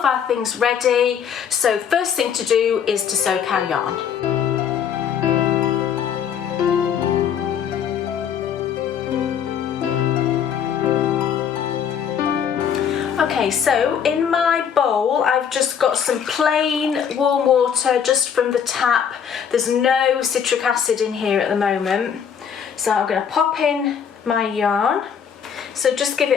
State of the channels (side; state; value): right; quieter; 7.9 dB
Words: our things ready. So first thing to do is to soak our yarn. Okay, so in my bowl I've just got some plain warm water just from the tap. There's no citric acid in here at the moment. So I'm going to pop in my yarn. So just give